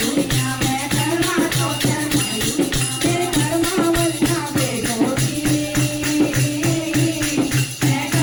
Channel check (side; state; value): both; identical; correlation 1.00